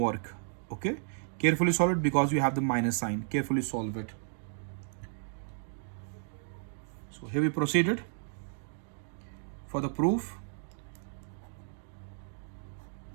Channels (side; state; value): left; silent; digital silence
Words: Okay, carefully solve it because you have the minus sign. Carefully solve it. So here we proceeded for the proof.